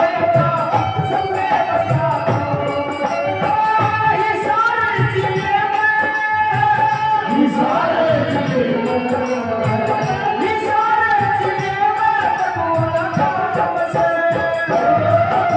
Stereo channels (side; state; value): both; identical; correlation 1.00